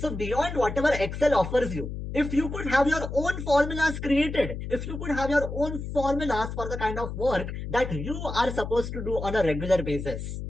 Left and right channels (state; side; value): noise; left; hum, 7 dB below the sound